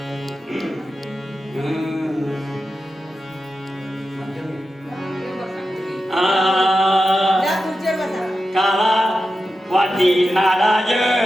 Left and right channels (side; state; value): both; normal; correlation 0.91